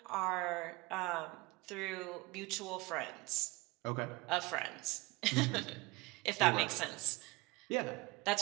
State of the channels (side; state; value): left; quieter; 23.3 dB